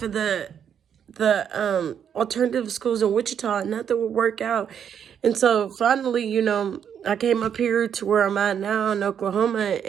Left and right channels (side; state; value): left; quieter; 8.4 dB